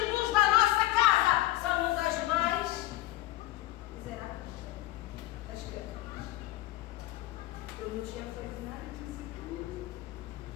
dos da nossa casa, somos as mais miseráveis das criaturas. Eu não tinha feito nada disso.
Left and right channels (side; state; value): right; quieter; 16.3 dB